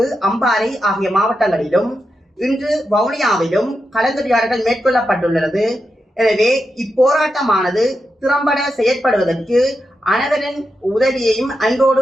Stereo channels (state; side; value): normal; both; correlation 0.87